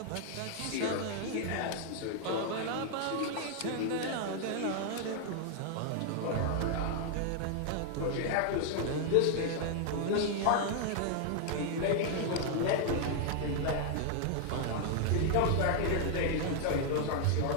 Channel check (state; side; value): different; both; correlation 0.00